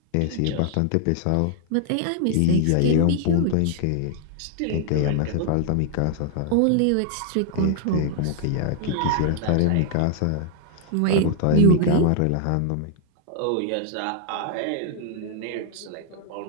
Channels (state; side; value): different; both; correlation 0.00